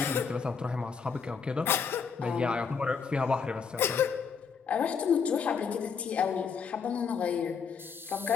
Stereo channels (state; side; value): quieter; right; 6.0 dB